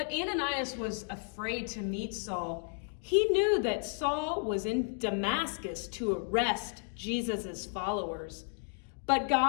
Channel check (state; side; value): silent; right; 56 dB below the other